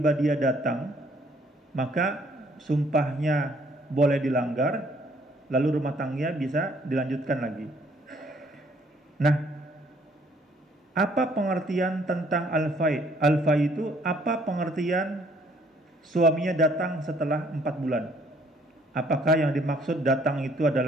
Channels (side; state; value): both; normal; correlation 0.63